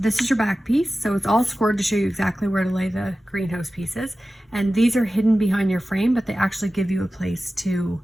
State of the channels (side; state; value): both; normal; correlation 0.95